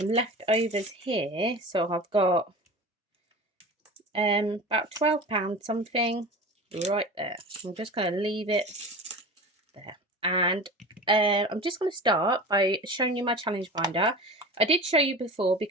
leftovers here. So I've got about £12 something right there. I'm just going to leave it there. And I'm just going to start by showing you my challenge binder. I did show you before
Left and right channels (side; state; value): both; normal; correlation 0.34